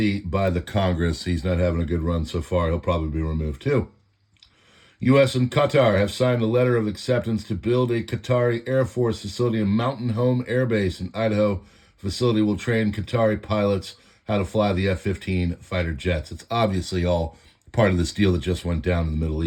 by the Congress. He's not having a good run so far. He'll probably be removed too. U.S. and Qatar have signed a letter of acceptance to build a Qatari Air Force facility in Mountain Home Air Base in Idaho. Facility will train Qatari pilots how to fly the F-15 fighter jets. It's obviously all part of this deal that just went down in the Middle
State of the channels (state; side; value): identical; both; correlation 1.00